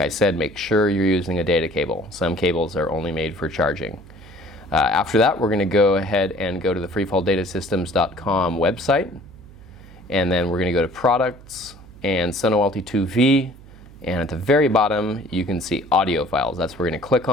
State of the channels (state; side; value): noise; right; hum, 20 dB below the sound